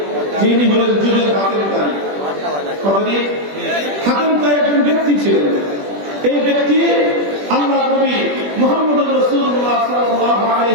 যিনি হলেন যুগের হাতিম তাই। কতদিন? হাতিম তাই একজন ব্যক্তি ছিলেন। এই ব্যক্তি আল্লাহ নবী মুহাম্মদ রাসূলুল্লাহ সাল্লাল্লাহু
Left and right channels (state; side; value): late; left; 21 ms